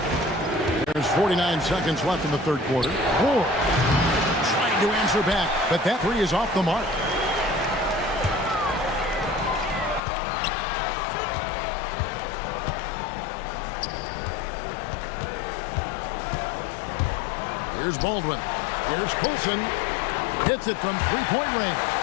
There's 49 seconds left in the third quarter. Ward trying to answer back, but that 3 is off the mark. Here's Baldwin. Here's Coulson. Hits it from three-point range.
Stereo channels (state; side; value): drops out; right; at 10.0 s